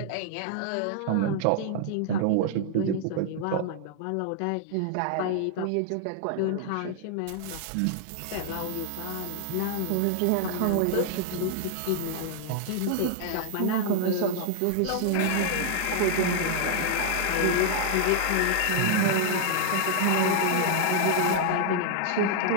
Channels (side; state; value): both; different; correlation 0.00